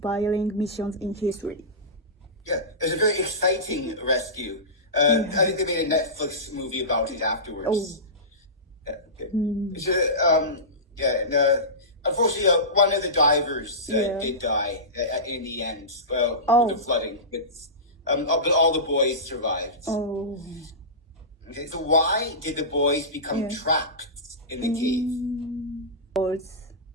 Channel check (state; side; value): normal; both; correlation -0.19